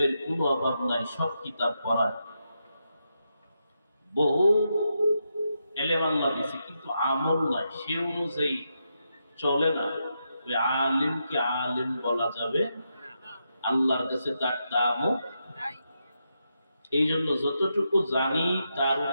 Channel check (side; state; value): both; inverted; correlation -0.84